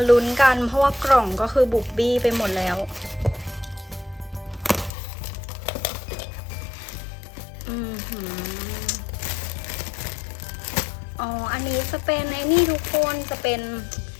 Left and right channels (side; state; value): right; drops out; at 4.9 s